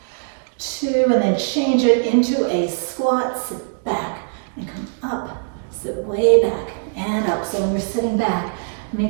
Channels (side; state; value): left; silent; digital silence